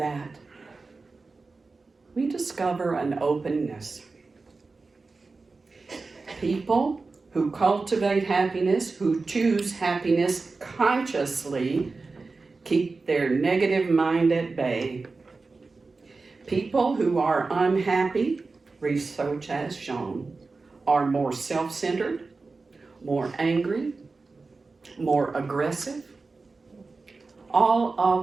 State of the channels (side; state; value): left; quieter; 3.9 dB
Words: we discover an openness. People who cultivate happiness, who choose happiness consciously, keep their negative mind at bay. People who are unhappy, research has shown, are more self-centered, more angry, more aggressive. All